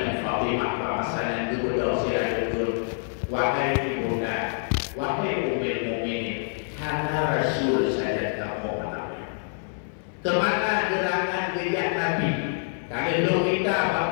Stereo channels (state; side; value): silent; right; 57 dB below the other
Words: Fatimah bahasanya kedua sirajul. Wahai ibunda, wahai Ummul Mukminin, hanya Rasul saja kamu mengenali. Kemana gerangan gejak Nabi? Kalau kita